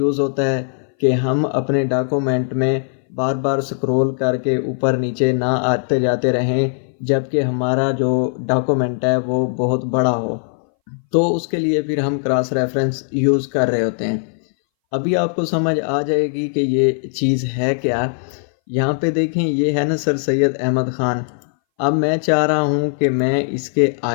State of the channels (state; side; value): silent; right; 62 dB below the other